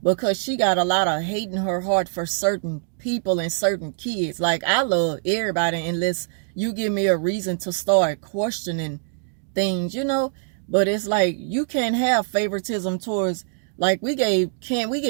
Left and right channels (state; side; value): silent; left; digital silence